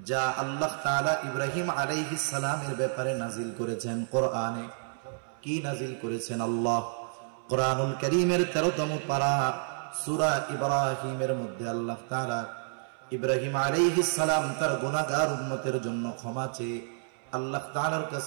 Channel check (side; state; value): left; silent; 58 dB below the other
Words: যা আল্লাহ তাআলা ইব্রাহিম আলাইহিস সালামের ব্যাপারে নাজিল করেছেন। কোরআনে কি নাজিল করেছেন? আল্লাহ কোরআনুল কারীমের 13তম পারা সূরা ইব্রাহিমের মধ্যে আল্লাহ তাআলা ইব্রাহিম আলাইহিস সালাম তার গুনাহগার উম্মতের জন্য ক্ষমা চেয়ে আল্লাহ তাআলার